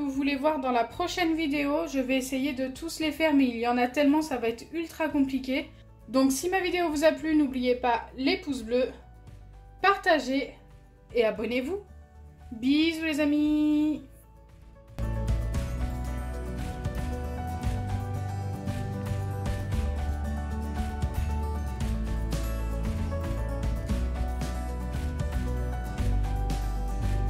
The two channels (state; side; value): identical; both; correlation 1.00